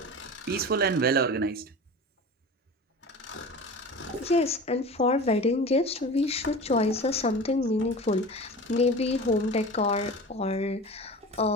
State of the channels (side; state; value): both; normal; correlation 0.34